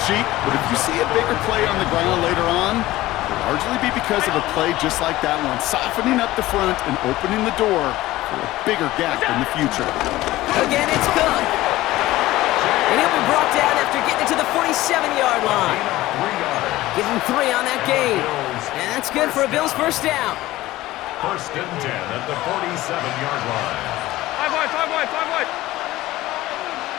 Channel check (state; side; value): quieter; right; 17.0 dB